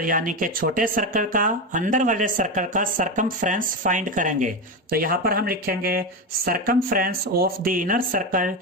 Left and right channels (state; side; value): normal; both; correlation 0.16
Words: यानी कि छोटे सर्कल का अंदर वाले सर्कल का सरकमफ्रेंस फाइंड करेंगे। तो यहां पर हम लिखेंगे circumference of the inner circle